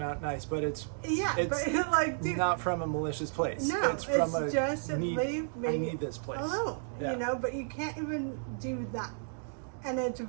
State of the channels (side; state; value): left; silent; digital silence